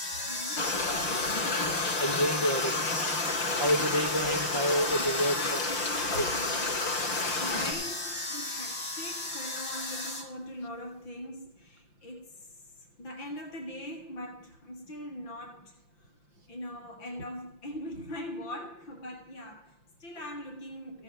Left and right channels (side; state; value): right; late; 5.8 ms